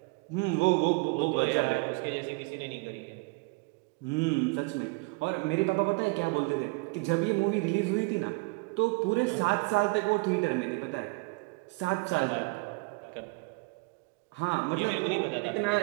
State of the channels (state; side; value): quieter; left; 28.1 dB